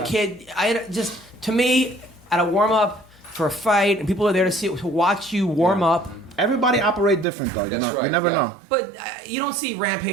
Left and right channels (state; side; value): drops out; left; at 7.2 s